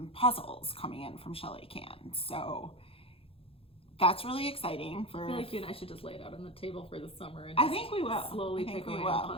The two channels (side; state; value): right; late; 0.27 ms